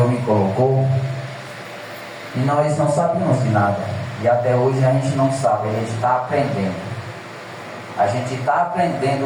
me colocou, e nós não sabíamos de nada, e até hoje a gente não sabe, a gente está aprendendo. A gente está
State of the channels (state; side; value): identical; both; correlation 1.00